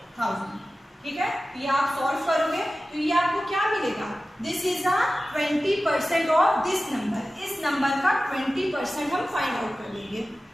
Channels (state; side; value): normal; both; correlation 0.95